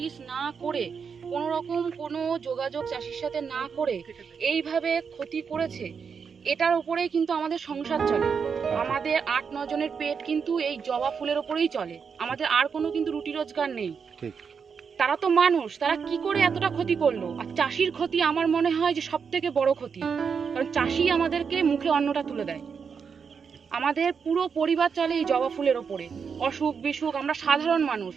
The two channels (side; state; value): left; quieter; 6.2 dB